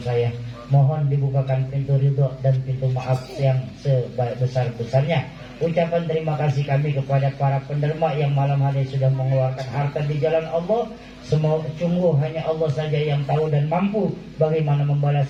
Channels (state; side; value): identical; both; correlation 1.00